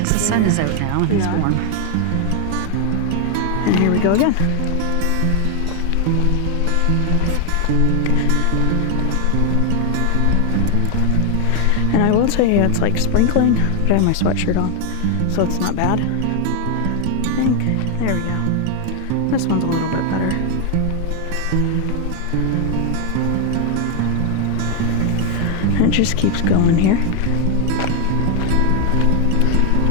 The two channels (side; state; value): both; different; correlation 0.00